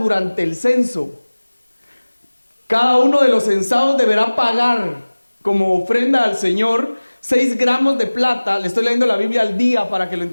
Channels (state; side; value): inverted; both; correlation -1.00